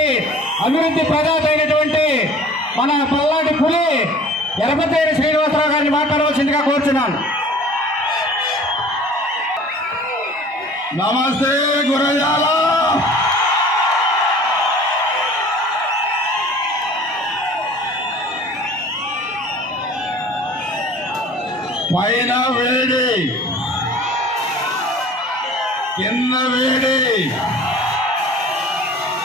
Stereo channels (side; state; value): both; normal; correlation 0.46